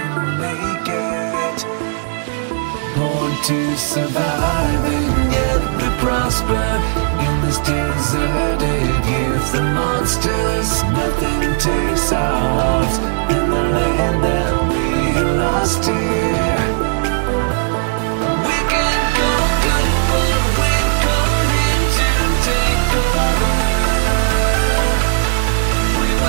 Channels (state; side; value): silent; left; 63 dB below the other